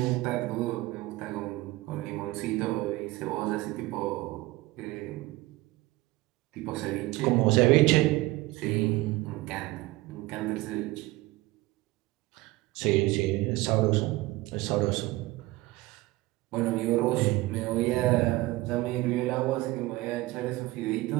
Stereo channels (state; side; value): quieter; left; 19.5 dB